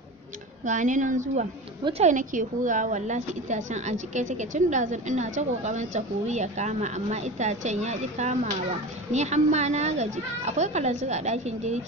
gani nan zuwa. Wutar nake hurawa, wallahi itacen a jike take tun ɗazun ina ta ƙoƙarin ta huri ya kama, amma itacen ya ƙi kamawa. Ni hamma na gaji. Akwai kalanzir a ɗakin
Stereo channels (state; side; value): normal; both; correlation 0.30